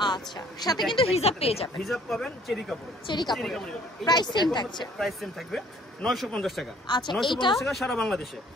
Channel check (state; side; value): normal; both; correlation 0.58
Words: আচ্ছা, সাথে কিন্তু হিজাব পেয়ে যাবেন। হিজাব পাবেন চেরি কাপড়। প্রাইস সেম থাকছে। প্রাইস সেম থাকবে 950 টাকা। আচ্ছা, 950 টাকা সারা বাংলাদেশে।